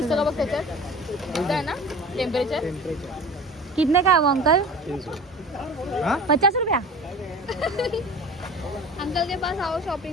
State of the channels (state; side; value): normal; both; correlation 0.39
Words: का बघ त्याच्यात? इथं आहे ना टेम्परेचर. कितने का है वो अंकल? 50 रुपया. अंकल के पास आओ